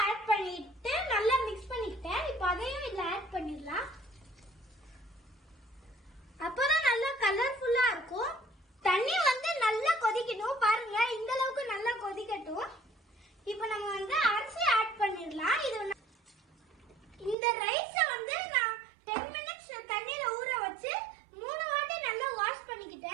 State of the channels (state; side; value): drops out; left; at 17.4 s